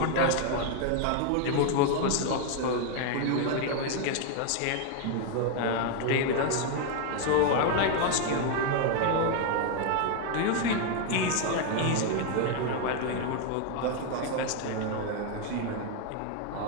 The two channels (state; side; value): different; both; correlation 0.00